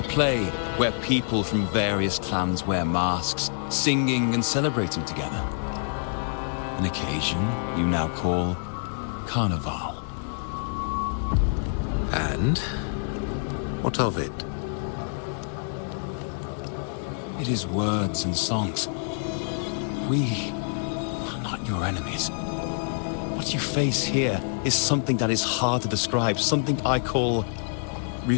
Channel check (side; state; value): right; silent; 60 dB below the other